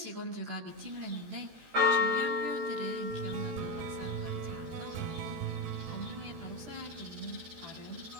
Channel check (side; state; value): left; late; 14 ms